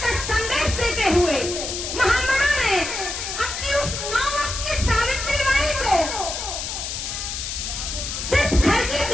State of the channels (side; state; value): left; noise; hiss, 5 dB below the sound